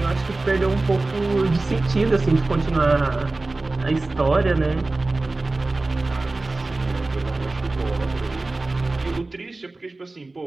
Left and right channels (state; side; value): quieter; left; 3.2 dB